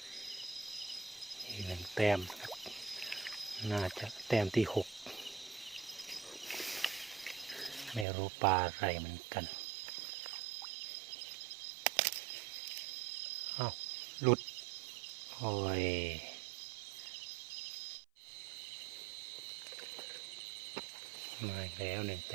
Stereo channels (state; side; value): drops out; left; at 8.1 s